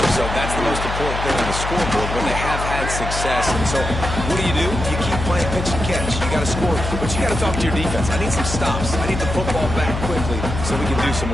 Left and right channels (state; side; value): noise; left; hum, 5 dB below the sound